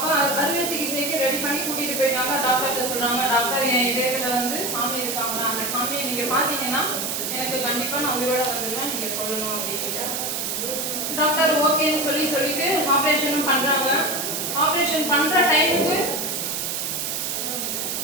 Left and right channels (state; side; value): noise; right; hiss, 2 dB below the sound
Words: அறுவை சிகிச்சைக்கு ரெடி பண்ணி கூட்டிகிட்டு போயிட்டாங்க. டாக்டர்கிட்ட சொல்கிறாங்க, டாக்டர் என் இதயத்தில் வந்து சாமி இருக்காங்களா, அந்த சாமியை நீங்கள் பார்த்தீங்கன்னா எனக்கு கண்டிப்பாக நான் உயிரோட வந்துடுவேன், நீங்கள் சொல்லணும் அப்படின்ட்டு. டாக்டர் ஓகேன்னு சொல்லிட்டு ஆப்ரேஷனும் பண்ணுறாங்க. ஆப்ரேஷன் பண்ணுற டைமுக்கு